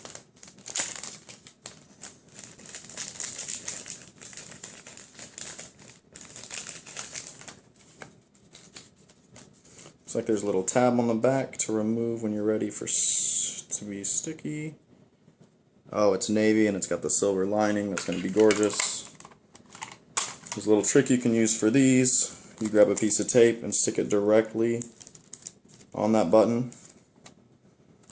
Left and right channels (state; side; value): identical; both; correlation 1.00